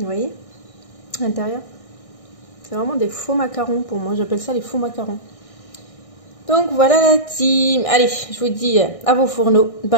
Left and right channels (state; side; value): late; right; 1.6 ms